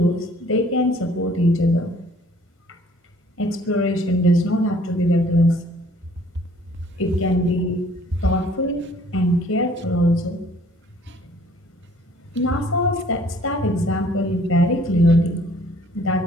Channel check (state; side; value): normal; both; correlation 0.57